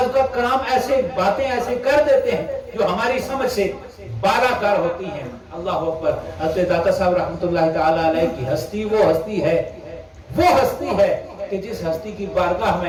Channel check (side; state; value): both; identical; correlation 1.00